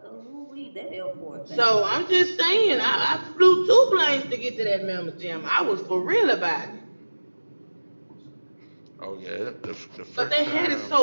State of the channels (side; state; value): both; inverted; correlation -1.00